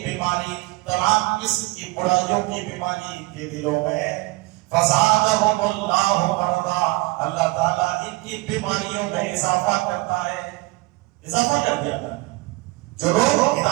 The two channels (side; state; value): left; quieter; 23.0 dB